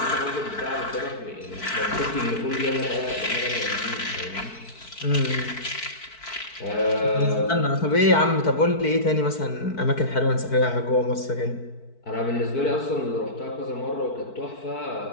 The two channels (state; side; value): late; right; 4.6 ms